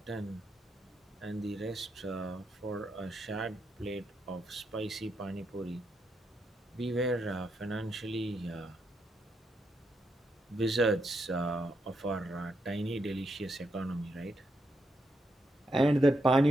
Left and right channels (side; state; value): both; normal; correlation 0.81